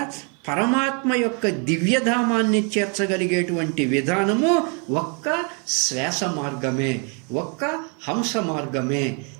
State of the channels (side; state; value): left; quieter; 36.8 dB